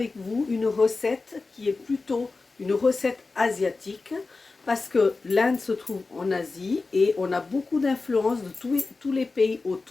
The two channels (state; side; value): quieter; right; 3.8 dB